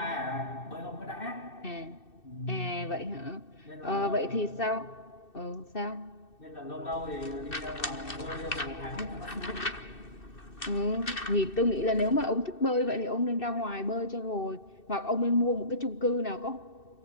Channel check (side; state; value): right; late; 2.6 ms